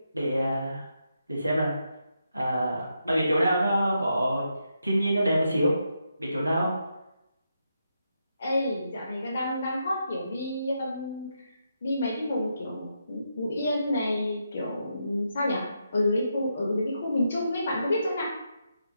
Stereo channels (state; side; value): inverted; both; correlation -0.82